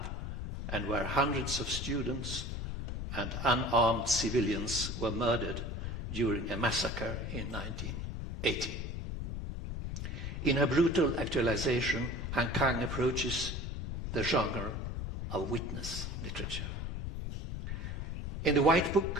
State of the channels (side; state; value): left; noise; rumble, 4 dB below the sound